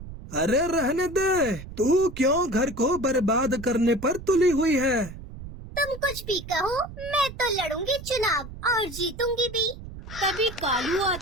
अरे रहने दे, तू क्यों घर को बर्बाद करने पर तुली हुई है? तुम कुछ भी कहो, मैं तो लड़ूंगी चुनाव और जीतूंगी भी। तभी कालू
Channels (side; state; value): right; noise; rumble, 13 dB below the sound